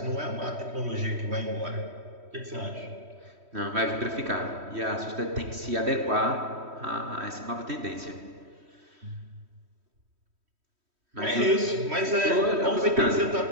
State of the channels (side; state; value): left; late; 3.1 ms